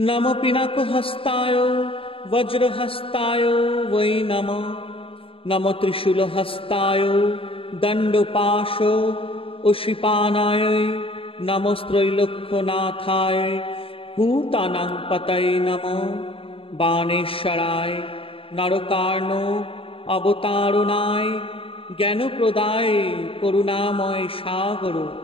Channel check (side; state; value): right; late; 0.27 ms